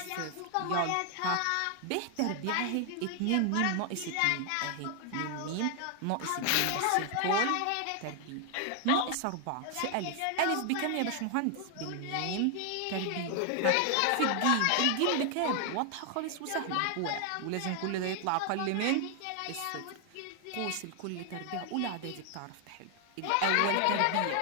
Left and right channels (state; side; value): different; both; correlation 0.00